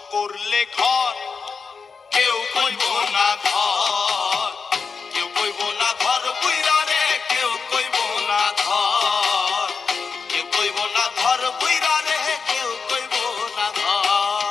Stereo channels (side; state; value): right; quieter; 5.2 dB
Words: করলে ঘর কেউ কইব না ঘর, কেউ কইব না ঘর বুইরা রে, কেউ কইব না ঘর, কেউ কইব না ঘর বুইরা রে, কেউ কইব না